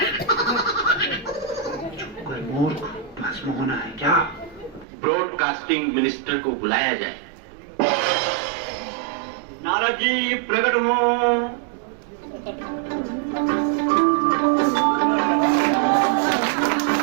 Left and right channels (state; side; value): drops out; left; at 4.9 s